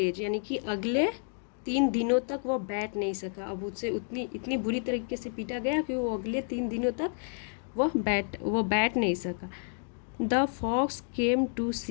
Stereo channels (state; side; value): silent; right; 58 dB below the other